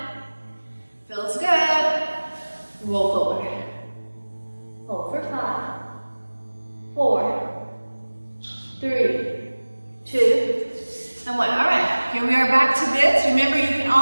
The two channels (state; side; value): inverted; both; correlation -1.00